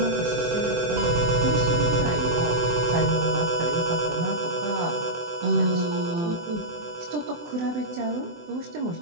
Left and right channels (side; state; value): left; late; 24 ms